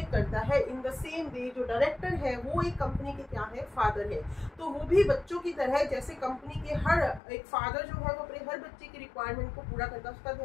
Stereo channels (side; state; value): right; drops out; at 7.2 s